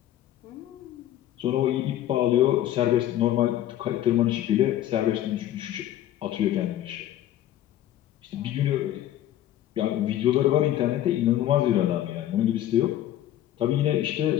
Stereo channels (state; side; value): quieter; right; 12.5 dB